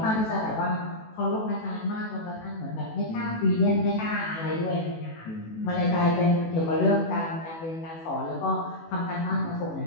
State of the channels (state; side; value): late; right; 18 ms